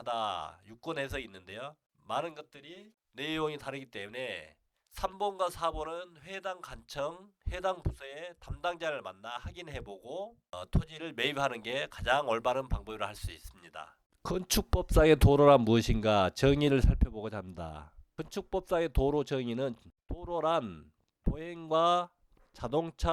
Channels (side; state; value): both; identical; correlation 1.00